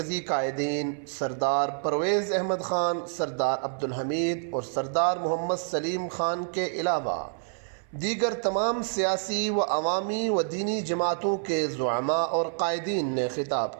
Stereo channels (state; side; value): silent; left; 60 dB below the other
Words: قائدین سردار پرویز احمد خان، سردار عبدالحمید اور سردار محمد سلیم خان کے علاوہ دیگر تمام سیاسی و عوامی و دینی جماعتوں کے زعماء اور قائدین نے